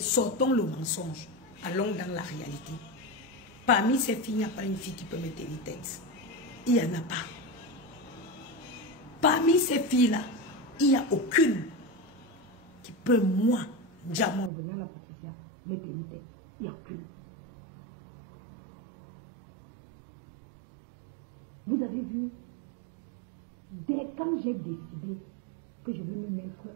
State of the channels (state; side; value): drops out; left; at 14.5 s